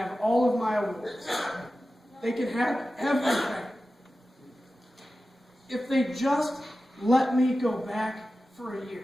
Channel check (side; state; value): both; normal; correlation 0.94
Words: all of my awards. They can have everything. If they just let me go back for a